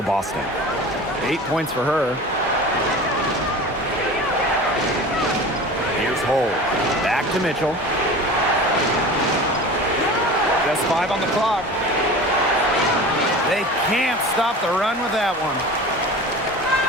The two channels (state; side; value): normal; both; correlation 0.36